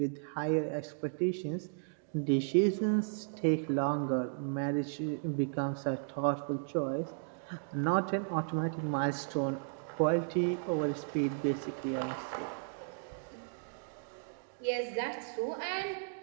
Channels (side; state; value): left; silent; digital silence